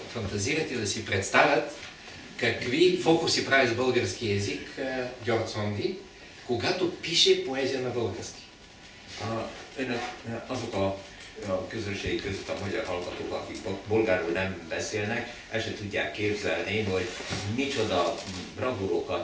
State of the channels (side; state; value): both; identical; correlation 1.00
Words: фантазират и да си представят какви фокуси прави с български език György Szondi, когато пише поезия на български. Azok a közönség között a magyar hallgatók, akik bolgárul nem beszélnek, el se tudják képzelni, hogy micsoda